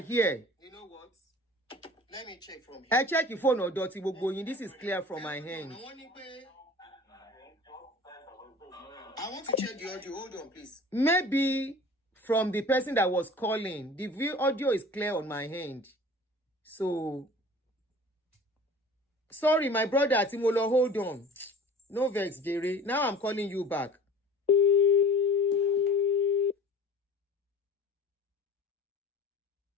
You know what? Let me check from here. I check your phone or dirty going. This is clear from my hand. I want to check the audio. Hold on, please. Maybe from the person that was calling. The audio is clear on my hand. So, sorry, my brother Timolo, hold on. No vex, Jerry. Now I'm calling you back.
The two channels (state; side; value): normal; both; correlation 0.42